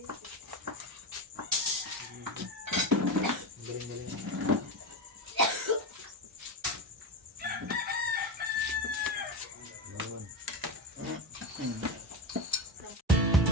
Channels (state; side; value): normal; both; correlation 0.19